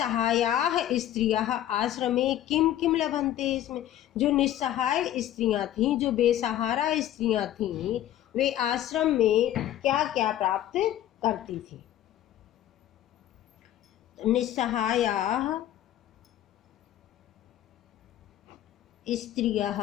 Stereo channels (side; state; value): right; quieter; 12.4 dB